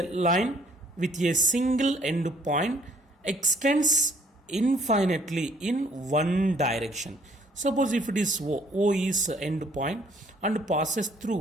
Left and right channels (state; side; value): normal; both; correlation 0.61